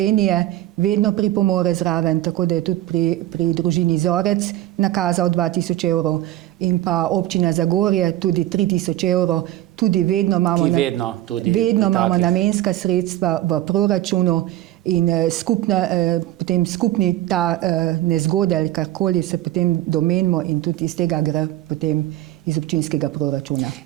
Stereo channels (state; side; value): quieter; left; 14.7 dB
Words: vedno pripomore zraven, tako da je tudi pri družini Zorec nakazal 2000 evrov in pa občina Zagorje tudi 3000 evrov, tudi vedno imamo namenska sredstva v proračunu in potem skupni ta nezgode ali karkoli se potem domenimo in tudi iz tega gre potem iz občinskega proračuna.